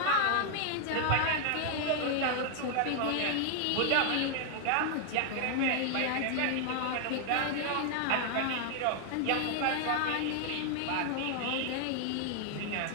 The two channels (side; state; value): both; different; correlation 0.00